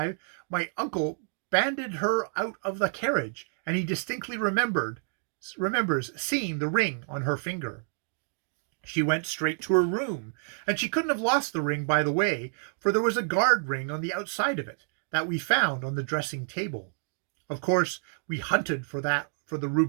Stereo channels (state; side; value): silent; left; 59 dB below the other